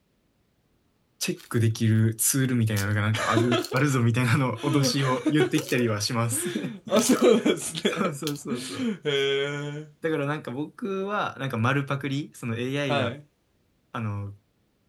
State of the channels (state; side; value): identical; both; correlation 1.00